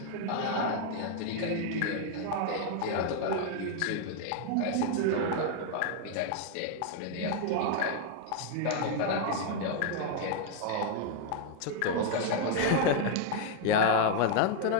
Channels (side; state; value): both; different; correlation 0.00